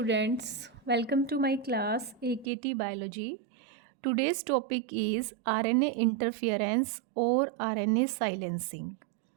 welcome to my class AKT Biology. Today's topic is RNA interference or RNA silencing.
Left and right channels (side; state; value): left; drops out; at 2.5 s